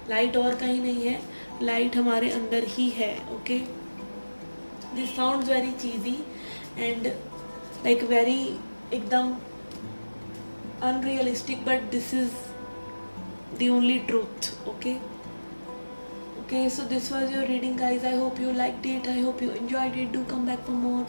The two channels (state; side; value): inverted; both; correlation -1.00